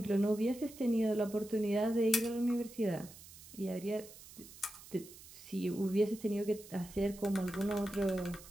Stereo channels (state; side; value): noise; right; hiss, 18 dB below the sound